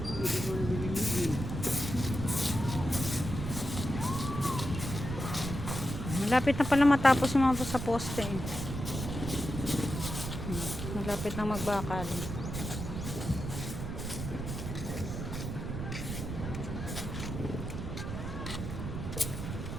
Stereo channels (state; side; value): noise; right; rumble, 5 dB below the sound